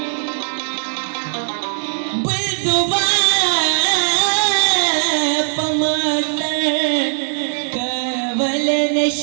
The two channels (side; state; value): left; silent; 60 dB below the other